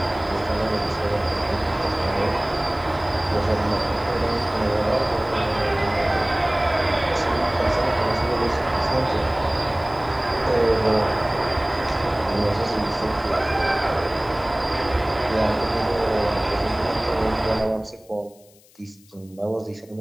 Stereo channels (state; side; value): noise; left; hiss, 28 dB below the sound